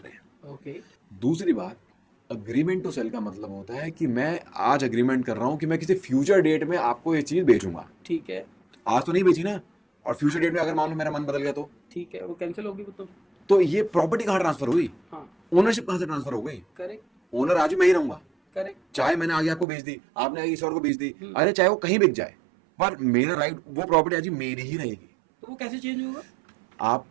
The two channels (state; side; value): drops out; left; at 19.7 s